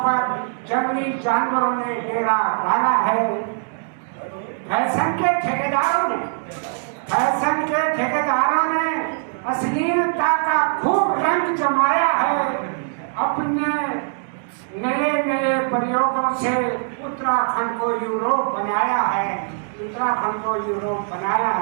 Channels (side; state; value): left; silent; digital silence